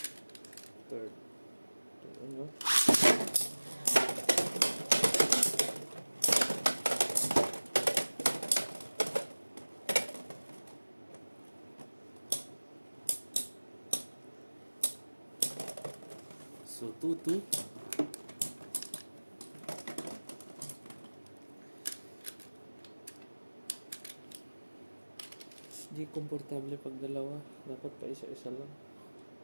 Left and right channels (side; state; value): both; inverted; correlation -1.00